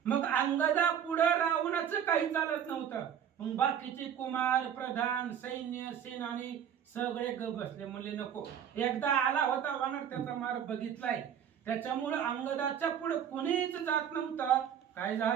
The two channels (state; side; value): quieter; left; 8.9 dB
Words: मग अंगदा पुढे रावणाचं काही चालत नव्हतं. मग बाकीचे कुमार प्रधान सैन्य सेनानी सगळे ग बसले, म्हणले नको. एकदा आला होता वानर, त्याचा मार बघितलाय, त्याच्यामुळे अंगदाच्या पुढे कोणीच जात नव्हतं. काय